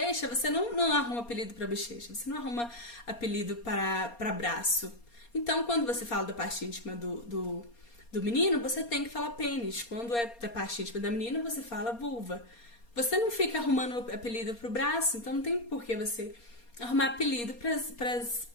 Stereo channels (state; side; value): late; right; 4.3 ms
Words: você não arruma apelido para bochecha, você não arruma apelido para braço. Então, quando você fala da parte íntima do menino, você tem que falar pênis. Quando é da parte íntima da menina, você fala vulva. Você não fica arrumando apelido pro braço, então não tem por que você arrumar apelido para as